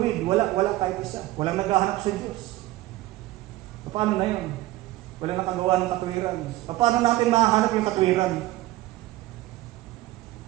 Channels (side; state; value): left; quieter; 17.1 dB